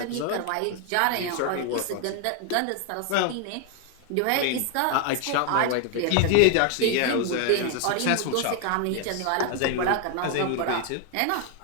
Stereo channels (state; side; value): different; both; correlation 0.01